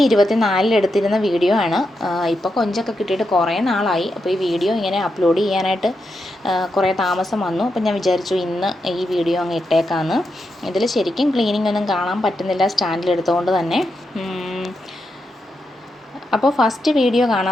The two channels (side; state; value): both; normal; correlation 0.85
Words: എടുത്തിരുന്ന വീഡിയോ ആണ്. ഇപ്പോൾ കൊഞ്ചൊക്കെ കിട്ടിയിട്ട് കുറേ നാളായി. അപ്പോൾ ഈ വീഡിയോ ഇങ്ങനെ അപ്ലോഡ് ചെയ്യാനായിട്ട് കുറേ താമസം വന്നു. അപ്പോൾ ഞാൻ വിചാരിച്ചു ഇന്ന് ഈ വീഡിയോ അങ്ങ് ഇട്ടേക്കാമെന്ന്. ഇതിൽ ശരിക്കും ക്ലീനിങ് ഒന്നും കാണാൻ പറ്റുന്നില്ല സ്റ്റാൻഡിലെടുത്തുകൊണ്ട് തന്നെ. അപ്പോൾ ഫസ്റ്റ് വീഡിയോ